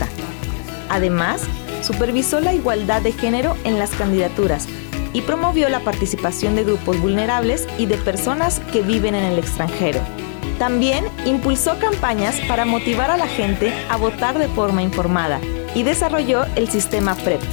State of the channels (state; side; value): silent; right; digital silence